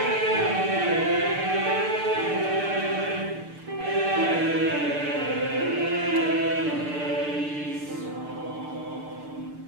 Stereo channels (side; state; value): left; late; 6.7 ms